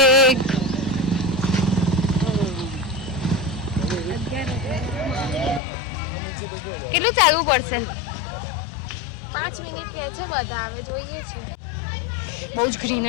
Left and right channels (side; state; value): right; drops out; at 5.6 s